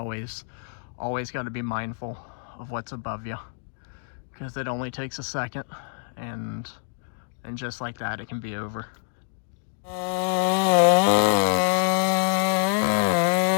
got to be mindful of what's above you, because it only takes a second, and just like that it can be over.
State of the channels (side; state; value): right; silent; digital silence